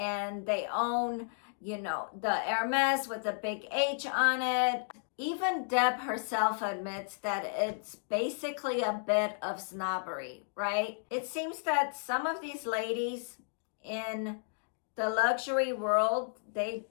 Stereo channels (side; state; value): right; silent; digital silence